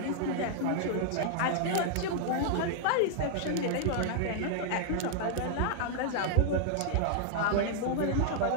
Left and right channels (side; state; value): both; different; correlation -0.01